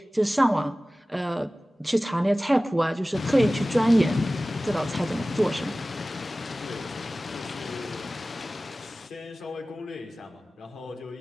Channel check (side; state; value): both; normal; correlation 0.97